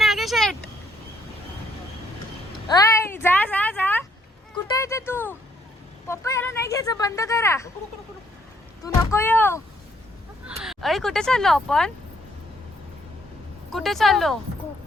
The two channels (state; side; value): normal; both; correlation 0.69